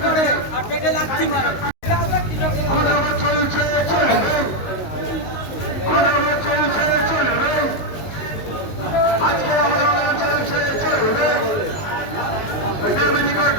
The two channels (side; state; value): right; late; 19 ms